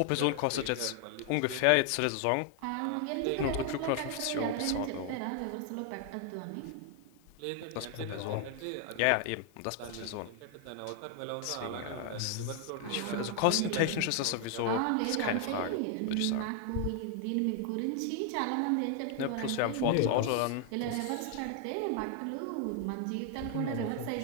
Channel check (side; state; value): both; different; correlation 0.00